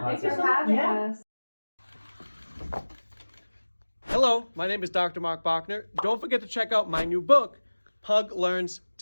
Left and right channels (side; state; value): both; inverted; correlation -1.00